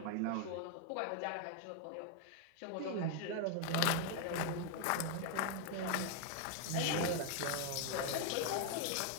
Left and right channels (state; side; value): different; both; correlation 0.00